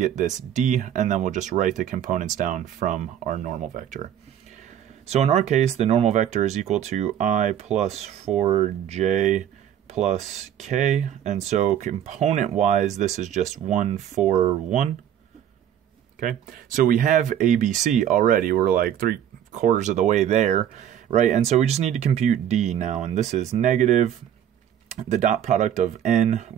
this d, and then we'll just write the components down from our normal vector. So in our case, the normal vector is equal to I plus 4j plus k, and so component-wise, this is just 1, 4, 1. Okay, so we have ABC already. We're like 3/4 of the way there, right? And so we just need to compute d now, and this is negative the dot product of n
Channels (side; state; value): left; quieter; 10.1 dB